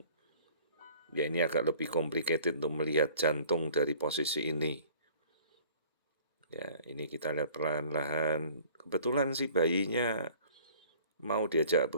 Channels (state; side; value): inverted; both; correlation -0.50